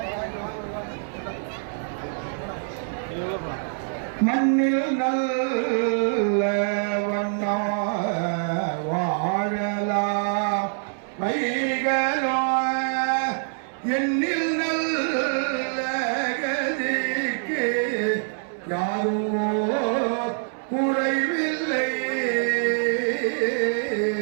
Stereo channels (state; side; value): silent; left; 62 dB below the other